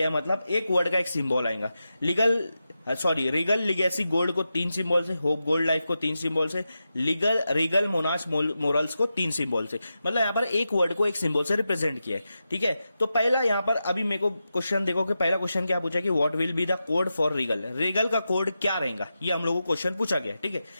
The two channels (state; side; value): inverted; both; correlation -0.90